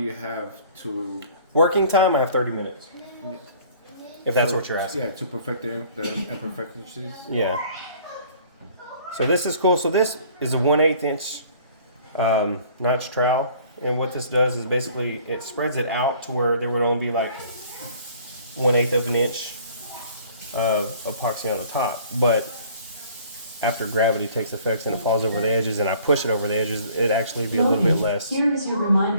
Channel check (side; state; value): both; inverted; correlation -0.54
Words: have to working time? I have 30 minutes. If that's what you're asking. Yeah, to perfect the imperfections. Yeah. So this is cool. So this is a 1/8 inch notch trowel, and what this does is basically it spreads it out to where there would only be like 1/8 of an inch of epoxy on the top, but after gravity takes effect and it falls over the edges and I push it over the edges, it'd actually be a little bit less. Here is your